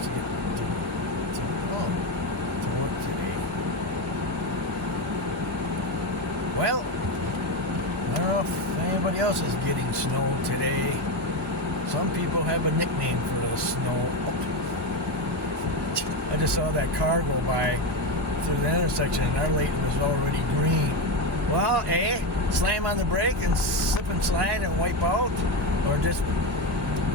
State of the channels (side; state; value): both; normal; correlation 0.14